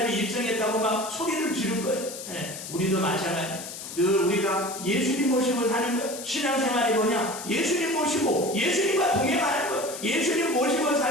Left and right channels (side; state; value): left; noise; hiss, 10 dB below the sound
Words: 입성했다고 막 소리를 지른 거예요. 우리도 마찬가지. 늘 우리가 예수님 모시고 사는 거예요. 신앙생활이 뭐냐? 예수님 모시고 예수님과 동행하는 거예요. 예수님 모시고